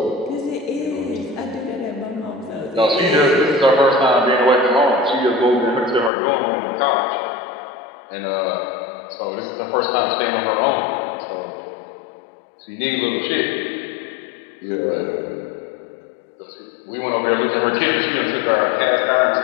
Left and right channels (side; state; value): right; drops out; at 6.1 s